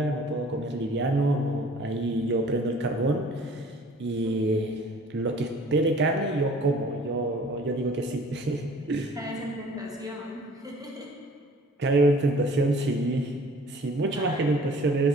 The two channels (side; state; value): both; normal; correlation 0.50